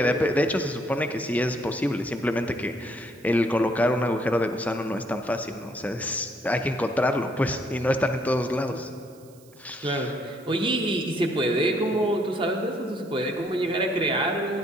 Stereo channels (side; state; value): right; noise; hiss, 27 dB below the sound